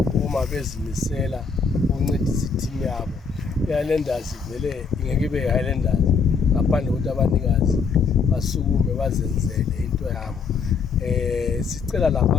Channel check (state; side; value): quieter; right; 5.3 dB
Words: bezimisela ukuncedisa i-team yabo. I-Highlanders vele ingeke ibe i-Highlanders ngaphandle kokuthi abanikazi basukume bazenzele into yabo. Sicela